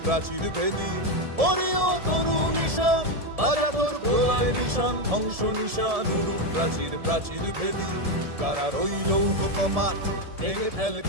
প্রাচীর ভেদী। ওরে ও তরু নিশান বাজা তোর প্রলয় নিশান, ধ্বংস নিশান উরুক প্রাচীর প্রাচীর ভেদী। কারার ওই লৌহ কপাট ভেঙে ফেল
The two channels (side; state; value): left; late; 1.7 ms